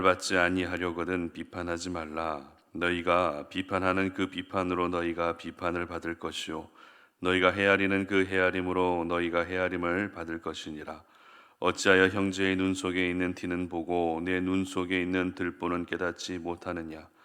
받지 아니하려거든 비판하지 말라. 너희가 비판하는 그 비판으로 너희가 비판을 받을 것이요 너희가 헤아리는 그 헤아림으로 너희가 헤아림을 받을 것이니라. 어찌하여 형제의 눈 속에 있는 티는 보고 내 눈 속에 있는 들보는 깨닫지 못하느냐.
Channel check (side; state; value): both; identical; correlation 1.00